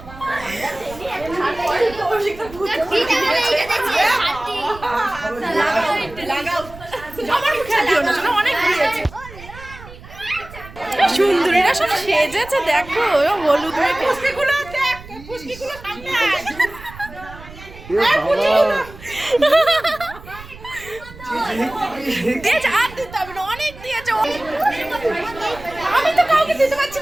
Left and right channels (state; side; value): noise; right; rumble, 17 dB below the sound